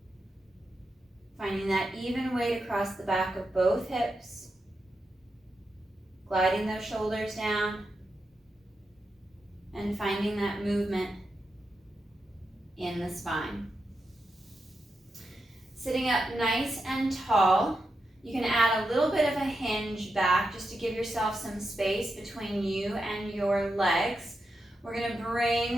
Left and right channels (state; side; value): normal; both; correlation 0.87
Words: Finding that even weight across the back of both hips. Gliding those shoulders down. And finding that movement in the spine. Sitting up nice and tall. You can add a little bit of a hinge back just to give yourself some space between you and your legs. We're going to